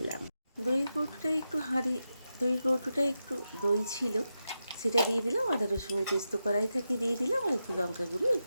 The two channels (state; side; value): inverted; both; correlation -0.89